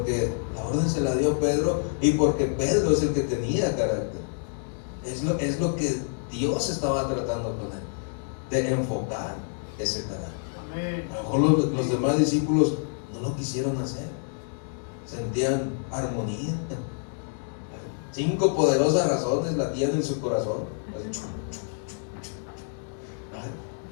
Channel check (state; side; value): silent; right; digital silence